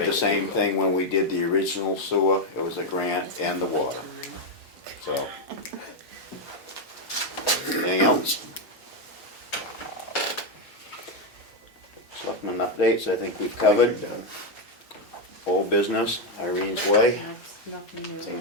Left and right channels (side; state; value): both; normal; correlation 0.04